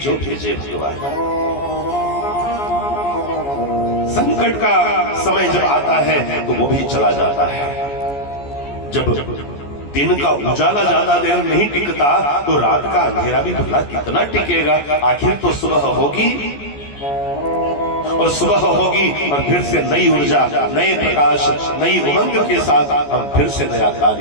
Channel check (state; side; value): late; right; 14 ms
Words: भेजे भगवान। संकट का समय जब आता है तो वो भी चला जाता है। जब दिन का उजाला ज्यादा देर नहीं टिकता तो रात का अंधेरा भी भला कितना टिकेगा। आखिर तो सुबह होगी, और सुबह होगी और फिर से नई ऊर्जा, नए प्रकाश, नई उमंग के साथ हम फिर से नया